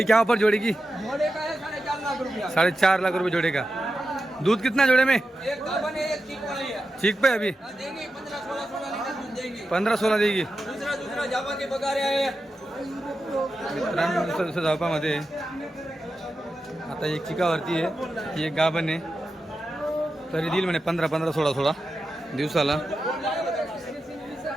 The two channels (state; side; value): normal; both; correlation 0.90